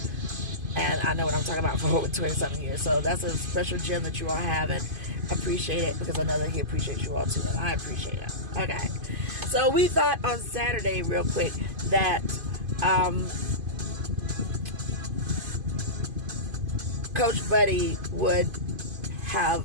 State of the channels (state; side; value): late; left; 2.5 ms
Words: and I know what I'm talking about for over 20-something years. So that's a special gem that you all have, and appreciate it, because I know that he appreciates you all too, and I appreciate it. Okay, so we thought on Saturday, real quick, that Coach Buddy would have